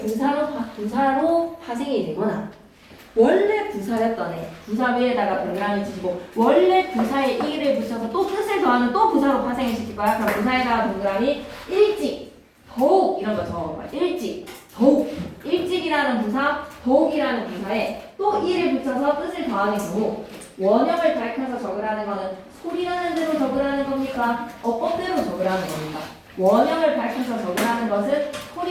파생이 되거나, 원래 부사였던 애 부사 위에다가 동그라미 치시고 원래 부사에 이를 붙여서 또 뜻을 더하는 또 부사로 파생을 시킬 거야. 그럼 부사에다가 동그라미 일찍, 더욱 이런 거 적어봐. 일찍, 더욱. 일찍이라는 부사, 더욱이라는 부사에 또 이를 붙여서 뜻을 더하는 경우, 원형을 밝혀서 적으라는 거는 소리나는 대로 적으라는 겁니까? 어법대로 적으라는 겁니까? 원형을 밝혀서 적으라는 것은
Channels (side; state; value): both; identical; correlation 1.00